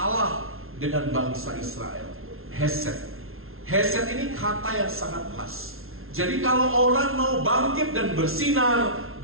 dengan bangsa Israel. Hesed. Hesed ini kata yang sangat pas. Jadi kalau orang mau bangkit dan bersinar,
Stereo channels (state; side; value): late; left; 0.62 ms